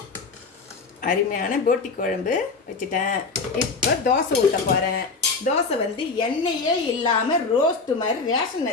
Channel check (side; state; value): right; quieter; 4.3 dB